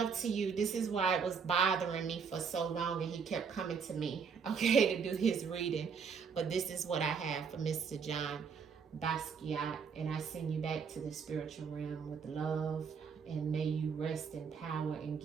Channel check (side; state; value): left; quieter; 6.1 dB